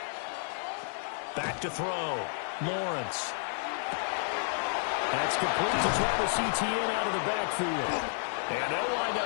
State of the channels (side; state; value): right; silent; 57 dB below the other